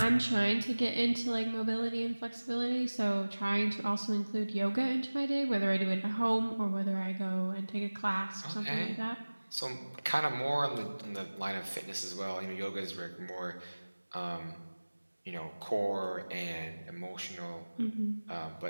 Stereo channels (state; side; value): inverted; both; correlation -1.00